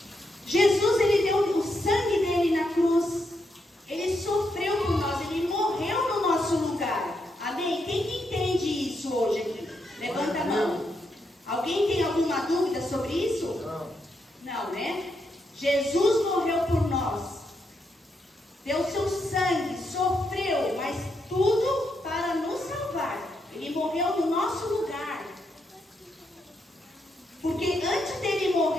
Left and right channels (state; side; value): normal; both; correlation 0.81